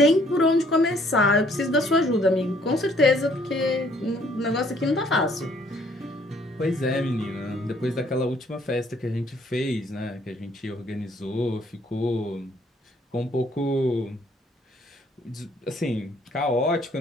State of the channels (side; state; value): both; normal; correlation 0.63